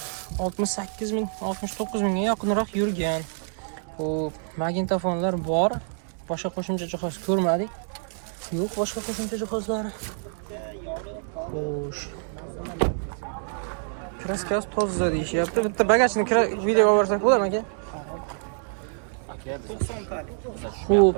68 ming, 69 mingga yaqinroq yurgan. Xo'p, magnitofonlar bor. Boshqa qo'shimcha jihoz ko'rmadik. Yo'q, boshqa qo'shimcha jihozlari. Xo'sh. Kraskasi toza deyishyapti. Bitta bagajni videoga olsak bo'ladimi aka? 90 talik. Xo'p,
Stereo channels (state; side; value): silent; left; digital silence